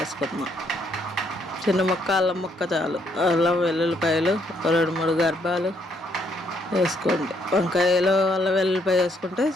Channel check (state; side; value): normal; both; correlation 0.71